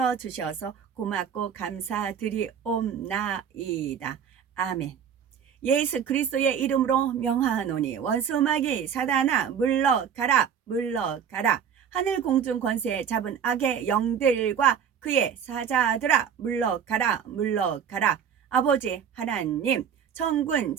주셔서 고맙고 감사드리옵나이다. 아멘. 예수 그리스도의 이름으로 명하노니 원수마귀 사단아 물러가라, 물러가라. 하늘 공중 권세 잡은 악의 영들과 그의 사자들아 물러가라, 물러가라. 아버지 하나님, 천군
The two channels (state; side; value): quieter; left; 7.9 dB